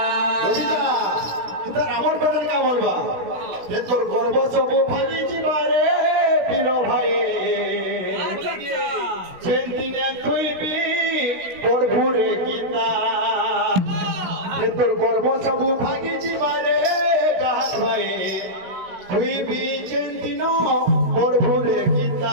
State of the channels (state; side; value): late; left; 17 ms